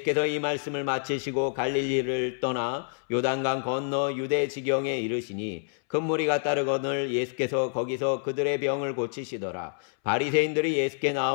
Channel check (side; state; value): right; silent; 60 dB below the other